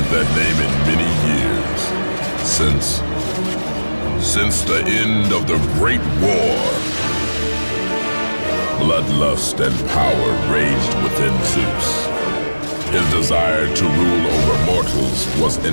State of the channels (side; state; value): both; inverted; correlation -1.00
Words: that name in many years. Since the end of the Great War. Bloodlust and power raged within Zeus. His desire to rule over mortals was